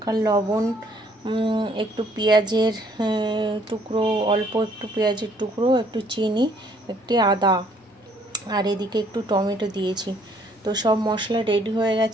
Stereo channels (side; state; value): both; normal; correlation 0.63